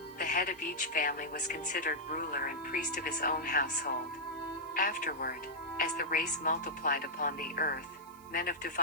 the head of each family was considered ruler and priest of his own household. Afterward, as the race multiplied upon the earth, men of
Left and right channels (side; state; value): right; noise; hiss, 24 dB below the sound